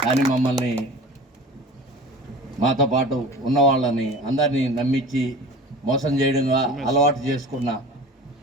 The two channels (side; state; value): both; normal; correlation 0.39